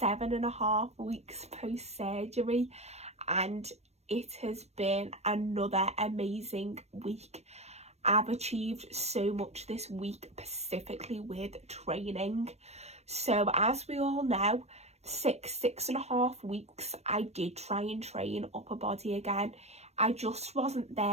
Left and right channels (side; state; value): left; late; 0.31 ms